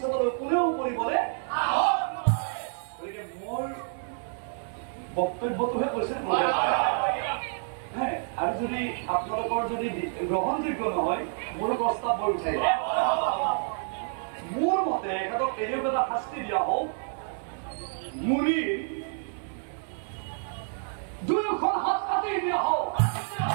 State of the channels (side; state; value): left; silent; 59 dB below the other